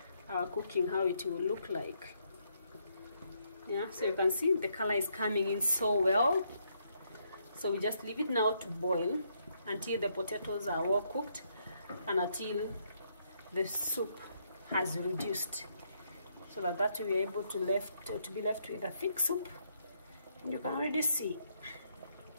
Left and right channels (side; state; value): both; inverted; correlation -0.75